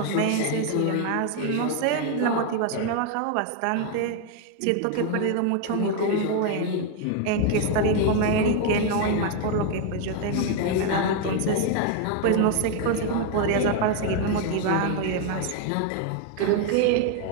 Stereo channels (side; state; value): both; different; correlation 0.01